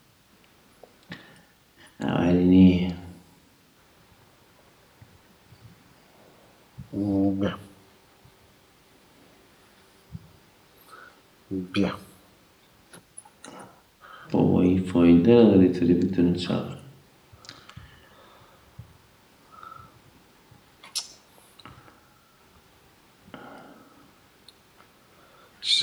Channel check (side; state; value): both; identical; correlation 1.00